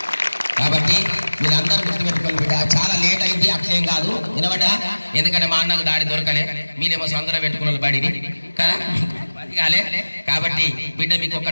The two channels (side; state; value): both; inverted; correlation -1.00